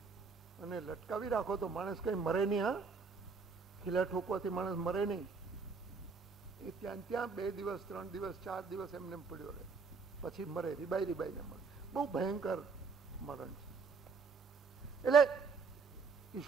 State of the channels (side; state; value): left; quieter; 4.9 dB